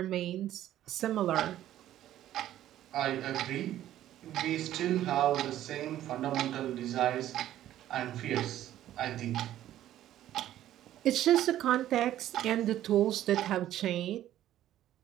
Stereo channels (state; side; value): quieter; left; 12.7 dB